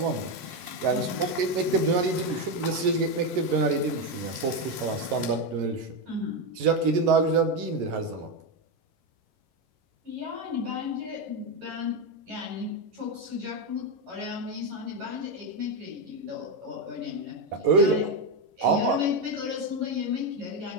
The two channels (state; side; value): late; left; 11 ms